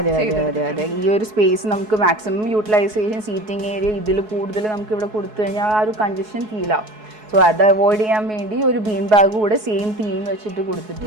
അതെ അതെ അതെ ഈ ഒരു സ്പേസ് നമുക്ക് മാക്സിമം യൂട്ടിലൈസേഷൻ, സീറ്റിംഗ് ഏരിയ ഇതിൽ കൂടുതൽ നമുക്ക് ഇവിടെ കൊടുത്തു കഴിഞ്ഞാൽ ആ ഒരു കൺജഷൻ ഫീൽ ആവും. സോ അത് അവോയ്ഡ് ചെയ്യാൻ വേണ്ടി ഒരു ബീൻ ബാഗ് കൂടെ സെയിം തീം വെച്ചിട്ട്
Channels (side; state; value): left; late; 4.7 ms